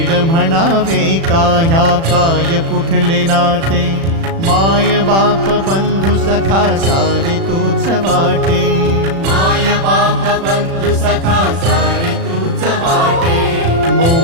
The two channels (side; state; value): left; late; 36 ms